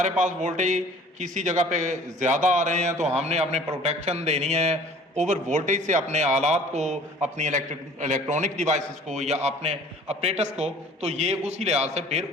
पास वोल्टेज किसी जगह पे ज़्यादा आ रहे हैं तो हमने अपने प्रोटेक्शन देनी है ओवर वोल्टेज से अपने आलात को, अपनी इलेक्ट्रॉनिक डिवाइसेस को या अपने ऑपरेटर्स को। तो ये उसी लिहाज से फिर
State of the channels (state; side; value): normal; both; correlation 0.50